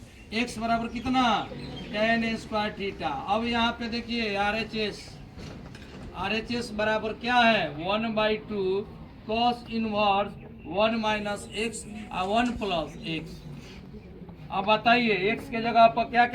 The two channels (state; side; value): identical; both; correlation 1.00